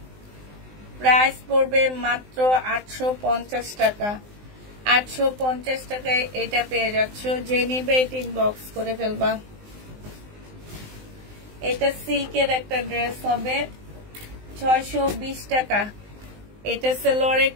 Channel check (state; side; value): late; left; 19 ms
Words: প্রাইস পড়বে মাত্র 850 টাকা। 850 টাকায় এটা পেয়ে যাচ্ছ। যে নিবে এটা ইনবক্স করে ফেলবা। এটা সিল্কের একটা ড্রেস হবে 620 টাকা। এটা সালোয়ারের